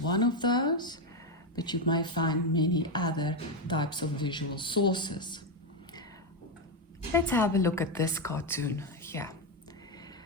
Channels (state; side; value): normal; both; correlation 0.07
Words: of those, but you may find many other types of visual sources. Let's have a look at this cartoon here.